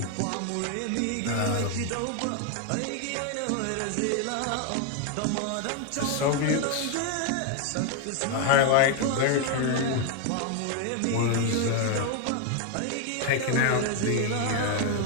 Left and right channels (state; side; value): different; both; correlation 0.00